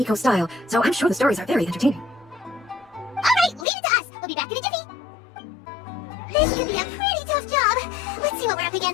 style, so I'm sure the stories are very entertaining. Alright, leave it to us. We'll be back in a jiffy. This could be a pretty tough job. Let's see what we're up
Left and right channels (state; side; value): drops out; right; at 3.7 s